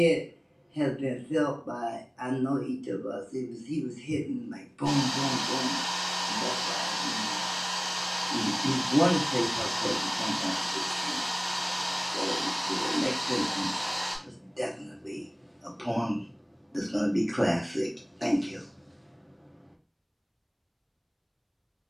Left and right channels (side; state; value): both; identical; correlation 1.00